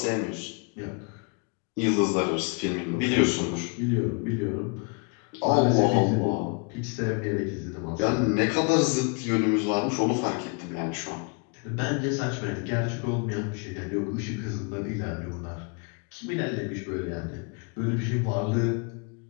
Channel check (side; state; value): right; quieter; 35.2 dB